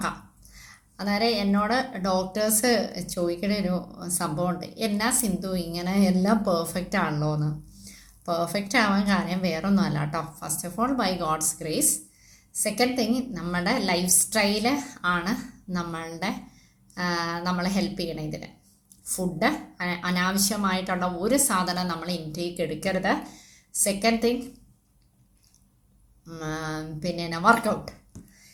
അന്നേരം എന്നോട് ഡോക്ടേഴ്സ് ചോദിക്കുന്ന ഒരു സംഭവമുണ്ട്, എന്നാ സിന്ധു ഇങ്ങനെ എല്ലാം പെർഫെക്റ്റ് ആണല്ലോ എന്ന്. പെർഫെക്റ്റ് ആവാൻ കാര്യം വേറൊന്നും അല്ല കേട്ടോ. First of all by God's grace. Second thing, നമ്മുടെ ലൈഫ് സ്റ്റൈല് ആണ് നമ്മളെ ഹെൽപ്പ് ചെയ്യണം ഇതിന്. ഫുഡ്, അനാവശ്യമായിട്ടുള്ള ഒരു സാധനം നമ്മൾ ഇൻടേക്ക് എടുക്കരുത്. സെക്കൻഡ് തിങ്, പിന്നെ വർക്കൗട്ട്.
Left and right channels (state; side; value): identical; both; correlation 1.00